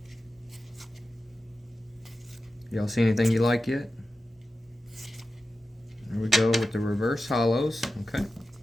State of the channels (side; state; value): both; normal; correlation 0.93